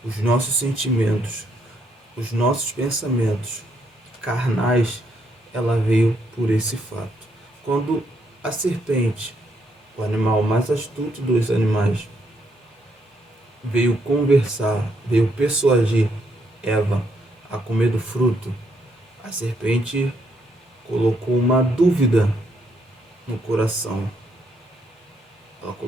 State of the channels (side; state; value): both; normal; correlation 0.74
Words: os nossos sentimentos, os nossos pensamentos carnais, ela veio por esse fato. Quando a serpente, o animal mais astuto dos animais, veio conversar, veio persuadir Eva a comer do fruto, a serpente colocou uma dúvida no coração. Ela